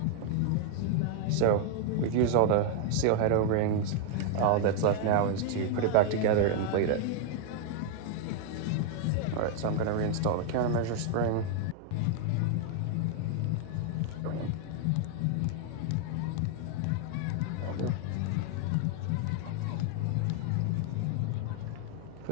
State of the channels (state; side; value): different; both; correlation 0.00